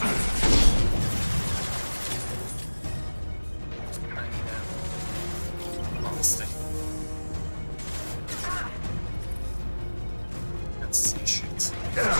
Honestly. Let's see shit.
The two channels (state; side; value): inverted; both; correlation -1.00